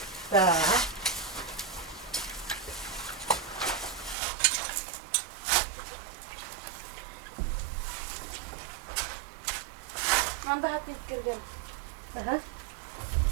Да. Надо опять кирган. Ага.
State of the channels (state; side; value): drops out; left; at 4.2 s